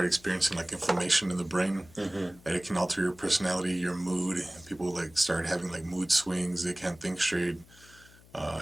experiencing like inflammation in the brain, that it can alter your personality, your mood. People like start having like mood swings. They can't think straight.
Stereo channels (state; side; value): noise; left; hum, 24 dB below the sound